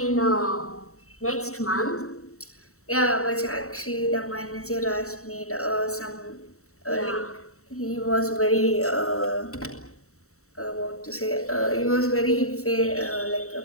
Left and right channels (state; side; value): late; right; 0.64 ms